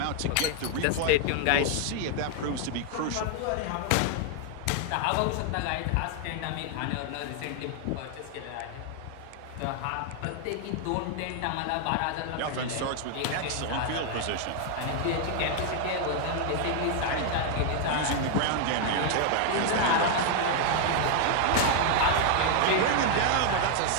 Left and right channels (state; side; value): different; both; correlation 0.00